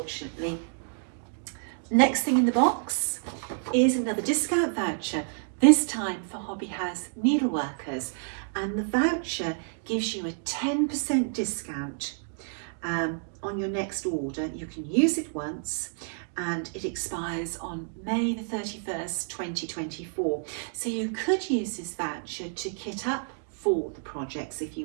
Next thing in the box is another discount voucher, this time for Hobby House Needleworkers. And the voucher gives you a 10% discount on your next order. You can use it once and it expires on May the 31st, 2024. So you could use this voucher to kit up for the projects if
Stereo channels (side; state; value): left; silent; digital silence